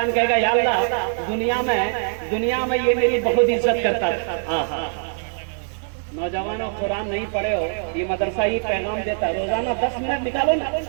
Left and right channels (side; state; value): left; silent; digital silence